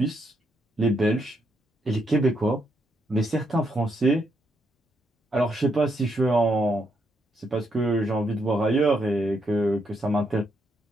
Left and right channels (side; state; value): both; normal; correlation 0.77